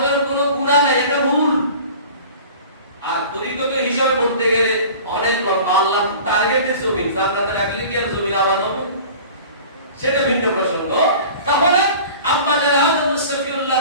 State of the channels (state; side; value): inverted; both; correlation -0.41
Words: কোনো গুনাহ নাই, এটা ভুল। আর তরিকত হিসাবে বলতে গেলে অনেক লোক আল্লাহ টার্গেটে জমি জান্নাতে রাখলে কি আর জমি আবাদ হবে, সেটা ভিন্ন প্রসঙ্গ। তাহলে আম্মা আদম